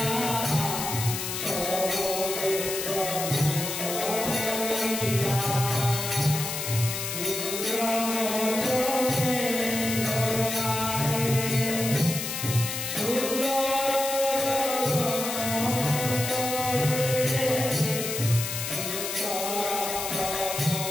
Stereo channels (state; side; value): noise; left; hiss, 4 dB below the sound